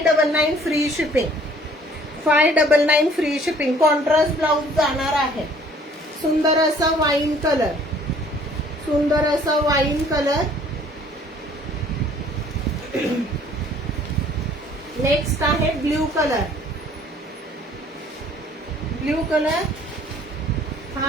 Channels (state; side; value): normal; both; correlation 0.56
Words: free shipping. 599 free shipping. Contrast blouse जाणार आहे. सुंदर असा वाईन कलर, सुंदर असा वाईन कलर. नेक्स्ट आहे ब्ल्यू कलर. Blue colour.